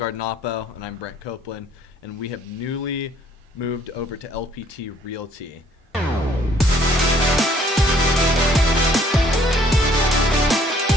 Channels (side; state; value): both; normal; correlation 0.62